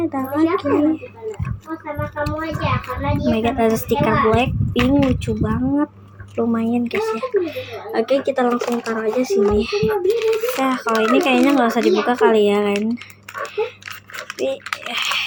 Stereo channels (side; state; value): both; identical; correlation 1.00